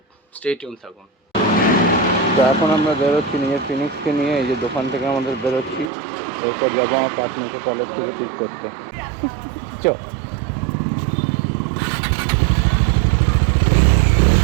স্টে টিউন থাকুন। তো এখন আমরা বেরোচ্ছি নিজের ফিনিক্সকে নিয়ে, এই যে দোকান থেকে আমাদের বেরোচ্ছি, এরপর যাবো আমার পার্টনারকে কলেজ থেকে পিক করতে। চো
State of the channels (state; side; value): drops out; left; at 5.9 s